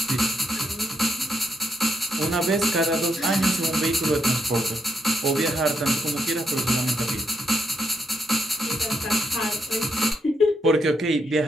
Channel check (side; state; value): both; normal; correlation 0.79